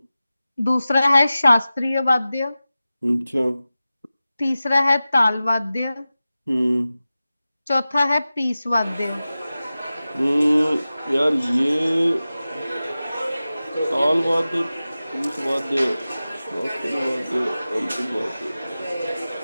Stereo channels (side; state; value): both; inverted; correlation -0.95